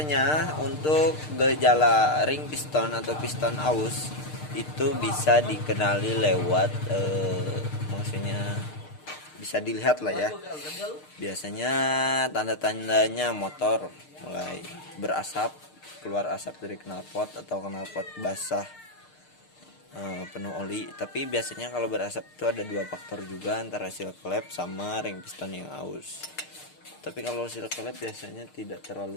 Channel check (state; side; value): late; right; 6.6 ms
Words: untuk gejala ring piston atau piston aus itu bisa dikenali lewat maksudnya bisa dilihat lah ya. Biasanya tanda-tandanya motor mulai berasap, keluar asap dari knalpot atau knalpot basah penuh oli. Tapi biasanya kalau berasap itu ada dua faktor juga, antara seal klep sama ring piston yang aus. Tapi kalau seal klep biasanya tidak